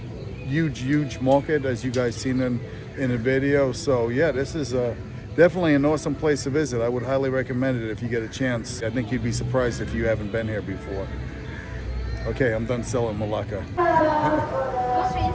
Huge market, as you guys seen in the video. So yeah, this is definitely an awesome place to visit. I would highly recommend it if you get a chance. I think you'd be surprised if you haven't been here before. Okay, I'm done selling Malacca. Go straight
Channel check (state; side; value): identical; both; correlation 1.00